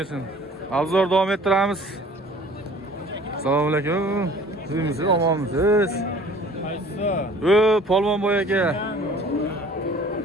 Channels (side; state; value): both; normal; correlation 0.50